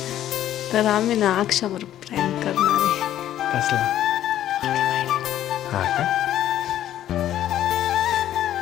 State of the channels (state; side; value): quieter; right; 12.1 dB